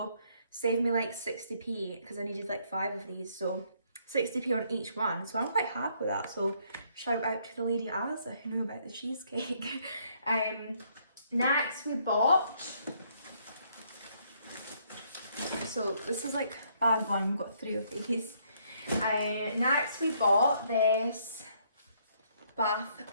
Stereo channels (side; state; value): both; inverted; correlation -0.69